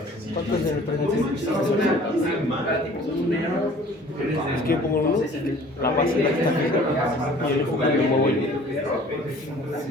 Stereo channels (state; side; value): normal; both; correlation 0.50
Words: ¿Cuánto es el precio? Es que yo pongo uno, la base la está fija y el enfoque lo muevo yo.